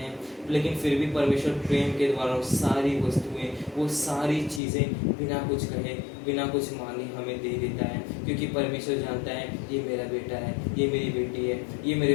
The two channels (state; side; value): drops out; right; at 4.6 s